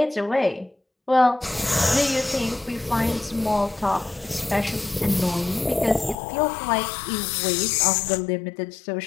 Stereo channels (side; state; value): right; drops out; at 6.2 s